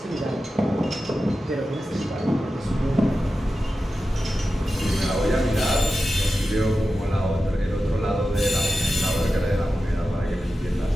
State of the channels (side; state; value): both; normal; correlation 0.92